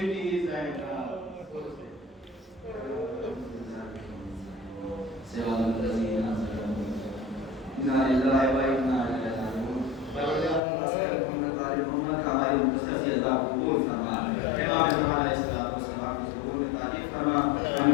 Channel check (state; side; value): drops out; right; at 10.6 s